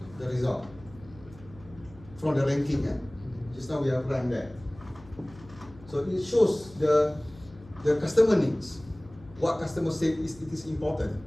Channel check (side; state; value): left; noise; hum, 21 dB below the sound